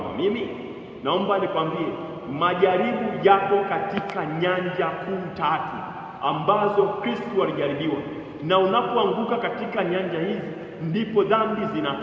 mimi? Naomba nikwambie, majaribu yapo katika nyanja kuu 3 ambazo Kristo alijaribiwa. Na unapoanguka katika nyanja hizi ndipo dhambi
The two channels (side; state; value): both; identical; correlation 1.00